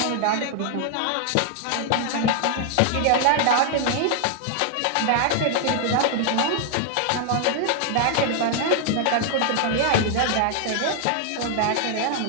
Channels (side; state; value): both; different; correlation 0.00